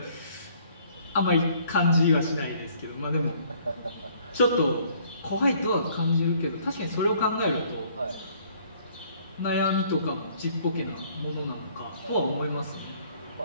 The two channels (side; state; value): both; inverted; correlation -0.60